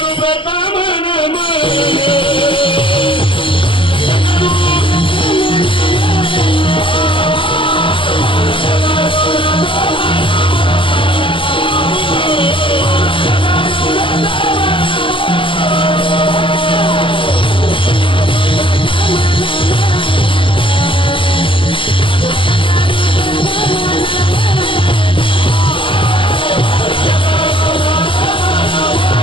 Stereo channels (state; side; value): late; right; 0.25 ms